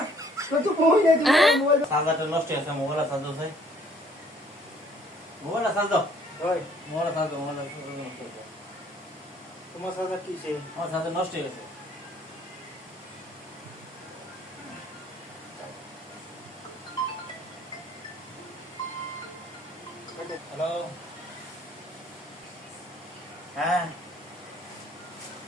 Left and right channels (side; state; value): both; normal; correlation 0.60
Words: তো বই নাই তুমি মোবাইল চার্জারটা নষ্ট হয়ে গেছে মোবাইল চার্জ দাও ভাই মোবাইল চার্জ দাও ওই মোবাইল চার্জ দাও মোবাইল নষ্ট হয়ে গেছে তোমার সাথে কি সে আমার চার্জার নষ্ট হয়ে গেছে হ্যালো হ্যাঁ